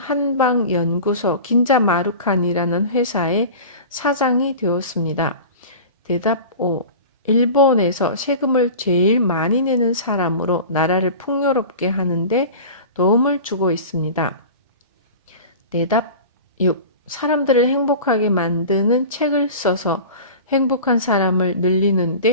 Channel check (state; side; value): inverted; both; correlation -0.36